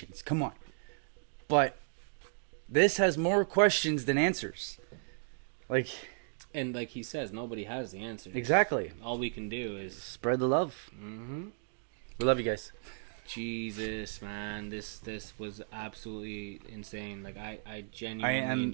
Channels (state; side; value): silent; left; digital silence